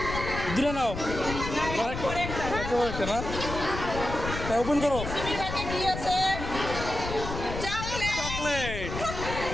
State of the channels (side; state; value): left; noise; rumble, 6 dB below the sound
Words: দূরে নাও। একটা না, ওপেন করো। চকলেট